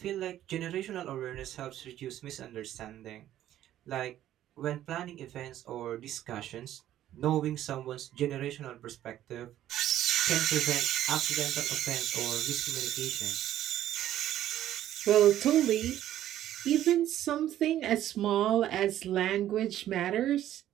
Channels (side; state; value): left; quieter; 12.4 dB